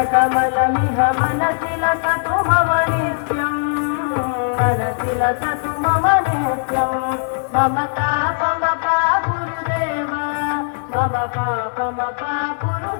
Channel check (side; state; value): right; silent; digital silence